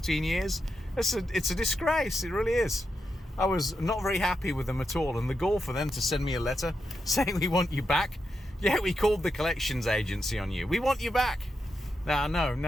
years, it's a disgrace. It really is. I was not very happy with them at all, and the gall for them to send me a letter saying, we want you back. Yeah, we called the collections agency on you. We want you back. No,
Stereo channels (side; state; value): both; normal; correlation 0.86